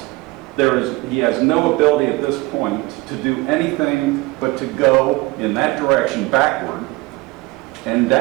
He has no ability at this point to do anything but to go in that direction backward and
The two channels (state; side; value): quieter; left; 22.9 dB